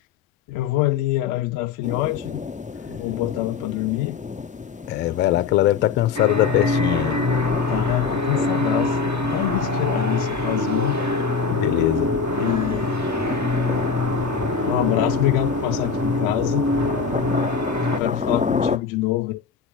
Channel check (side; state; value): right; quieter; 5.8 dB